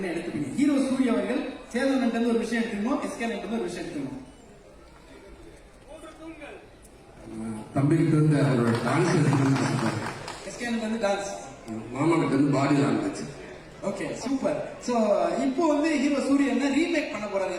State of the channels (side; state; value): both; identical; correlation 1.00